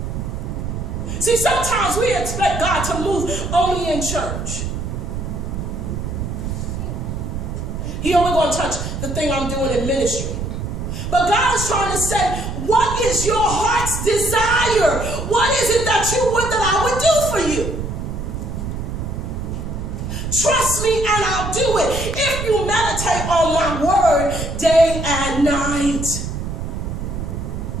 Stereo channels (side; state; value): right; noise; rumble, 4 dB below the sound